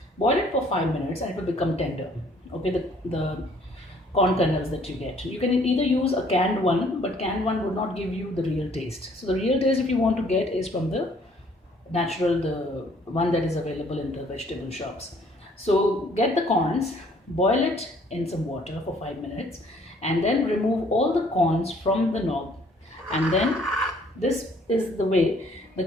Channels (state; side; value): normal; both; correlation 0.60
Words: Boil it for 5 minutes and it will become tender. Okay, the corn kernels that you get. You can either use a canned one, but canned one would not give you the real taste. So the real taste, if you want to get, is from the natural, the one that is available in the vegetable shops. So get the corns, boil it in some water for 5 minutes, and then remove all the corns from the knob, and then this is the way the